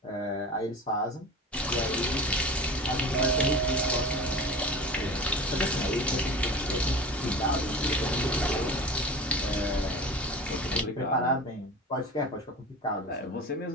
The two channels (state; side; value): normal; both; correlation 0.34